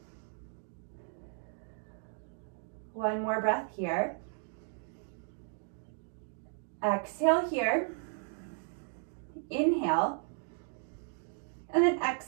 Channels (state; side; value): silent; left; 54 dB below the other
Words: One more breath here. Exhale here. Inhale. And then